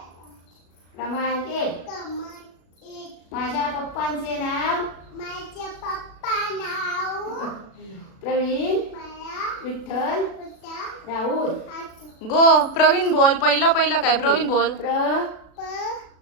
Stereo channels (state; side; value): late; right; 36 ms